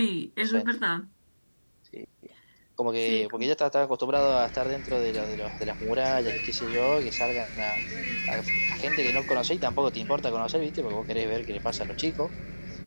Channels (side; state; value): both; inverted; correlation -1.00